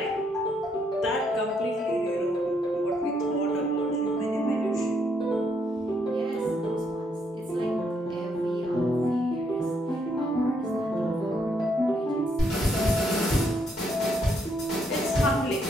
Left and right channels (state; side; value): normal; both; correlation 0.74